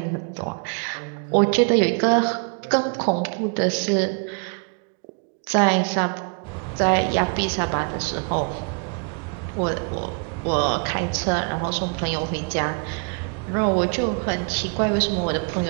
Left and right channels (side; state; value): left; quieter; 38.4 dB